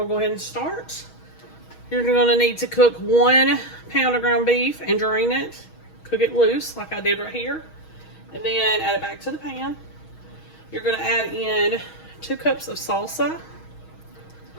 to go ahead and start. You're going to need to cook 1 pound of ground beef and drain it. Cook it loose like I did right here. And then add it back to the pan. You're going to add in 2 cups of salsa.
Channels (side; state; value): right; late; 6.3 ms